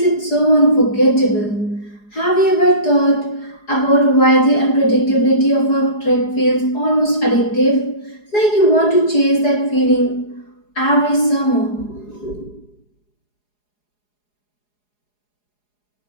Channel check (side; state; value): right; late; 4.8 ms